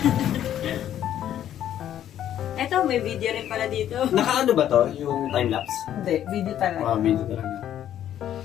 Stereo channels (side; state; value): right; quieter; 11.0 dB